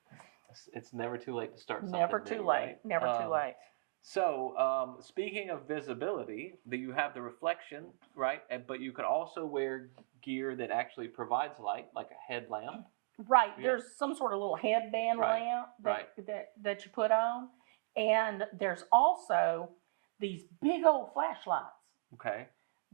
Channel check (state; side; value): silent; left; digital silence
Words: It's never too late to start something. Never too late. Right? Never too late. So, speaking of visibility, you have the reflection, right? But you can also wear gear that actually provides light, like a headlamp. Right. Yeah. There's some sort of little headband lamp that you put on. And there's also these big old flashlights. Okay.